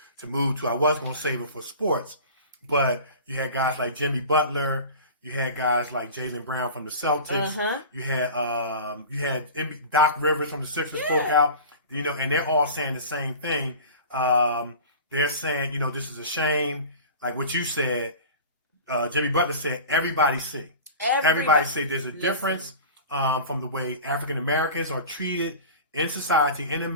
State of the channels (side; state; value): both; inverted; correlation -0.36